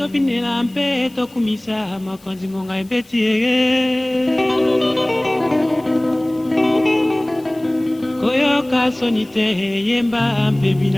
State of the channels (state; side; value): noise; left; hiss, 28 dB below the sound